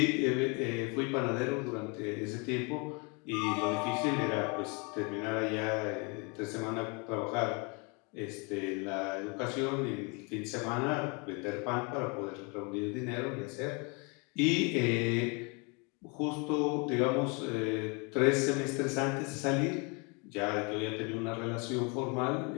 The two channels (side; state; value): right; quieter; 31.8 dB